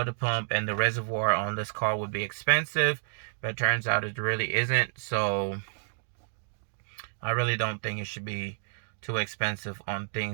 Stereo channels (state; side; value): silent; left; digital silence